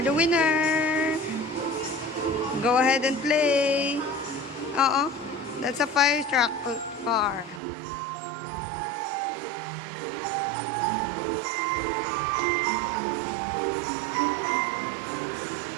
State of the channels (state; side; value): drops out; left; at 7.6 s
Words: the winner. Go ahead and play. Oo. That's a fire truck car.